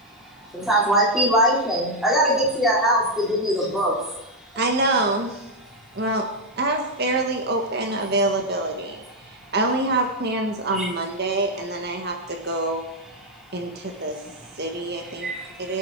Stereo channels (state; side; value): normal; both; correlation 0.01